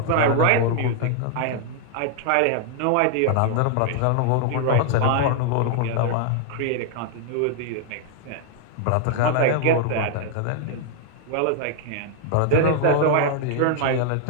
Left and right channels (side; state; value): both; different; correlation 0.00